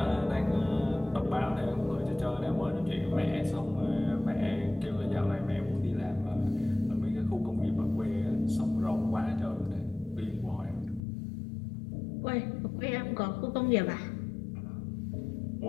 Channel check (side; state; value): right; drops out; at 11.0 s